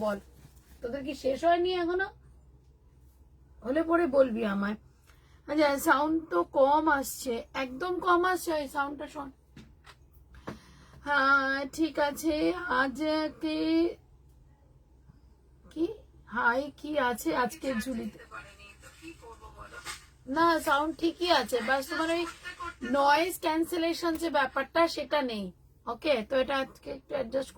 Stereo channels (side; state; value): both; identical; correlation 1.00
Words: বল? তোদের কি শেষ হয়নি এখনো? হলে পরে বলবি আমায়। আচ্ছা, সাউন্ড তো কম আসছে, একদম কম আসছে, এই সাউন্ডটা শোন। হ্যাঁ ঠিক আছে, আজকে কি হাই কি আছে আজকে ঝুলিতে? না, সাউন্ড ঠিকই আছে, বাস তোমার ওই নয়েজ ক্যান্সেলেশন যে ব্যাপারটা সেটা নেই। ওকে, তো এটা আজকে একটু অ্যাডজাস্ট